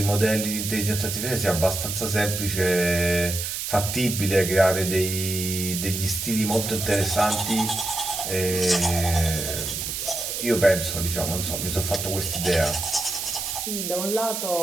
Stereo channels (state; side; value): noise; right; hiss, 4 dB below the sound